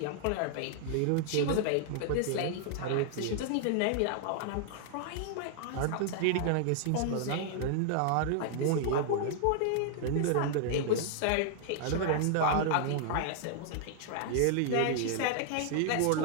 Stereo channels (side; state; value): both; different; correlation -0.01